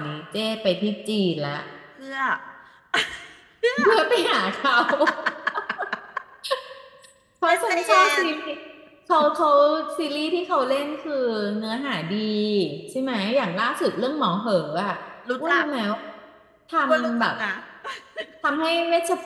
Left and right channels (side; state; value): both; identical; correlation 1.00